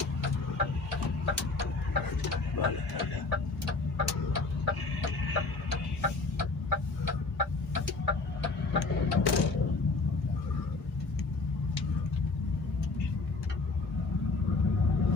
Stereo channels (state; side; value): quieter; right; 3.7 dB